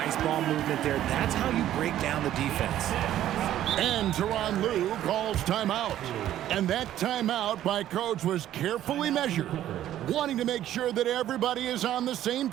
ball movement there. That's how you break down the defense. And Tyronn Lue calls timeout. And that timeout by coach was carefully measured, wanting to make sure that everybody is on the same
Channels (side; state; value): left; quieter; 12.3 dB